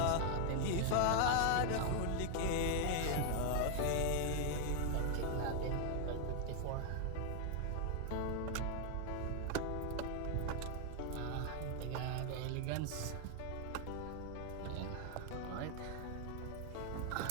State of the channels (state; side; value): different; both; correlation 0.00